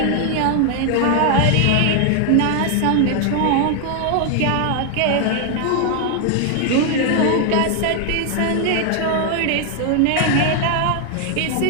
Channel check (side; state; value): both; different; correlation 0.00